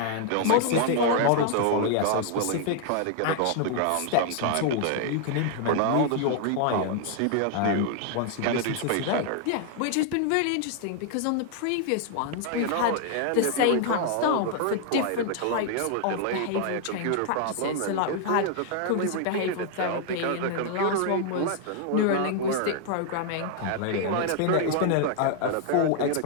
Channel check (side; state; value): both; different; correlation 0.00